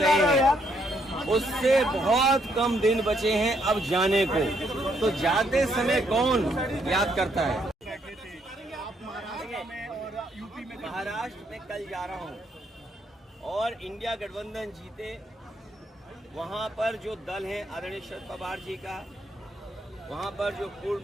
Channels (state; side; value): normal; both; correlation 0.73